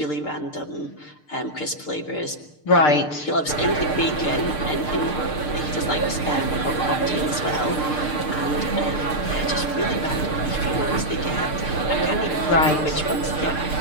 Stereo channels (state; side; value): late; right; 6.6 ms